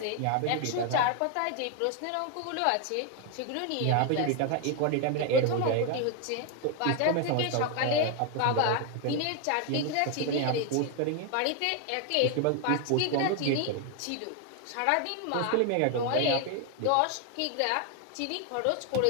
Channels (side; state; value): both; different; correlation 0.01